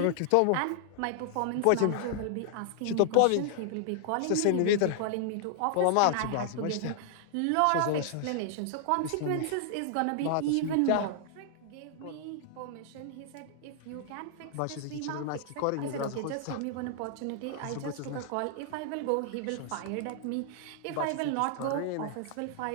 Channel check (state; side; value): different; both; correlation -0.01